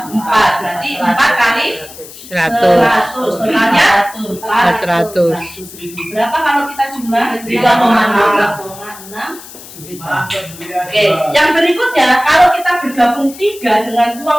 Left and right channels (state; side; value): noise; left; hiss, 17 dB below the sound